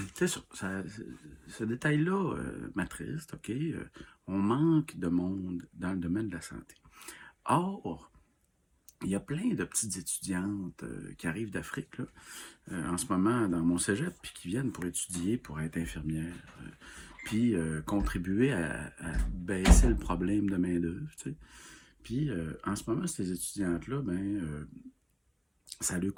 c'est ça, ce détail-là m'attriste, OK? On manque de monde dans le domaine de la santé. Or, il y a plein de petites étudiantes qui arrivent d'Afrique, là, en ce moment dans mon cégep, puis qui viennent pour étudier, pour être infirmières, puis contribuer à baisser le problème de main-d'œuvre, tu sais. Puis en ce moment, ces étudiantes-là, ça leur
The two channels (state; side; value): identical; both; correlation 1.00